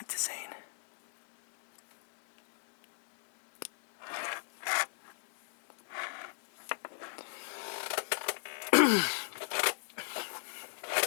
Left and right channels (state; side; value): silent; right; digital silence